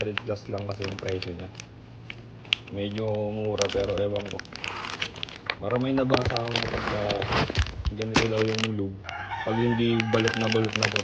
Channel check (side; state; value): both; identical; correlation 1.00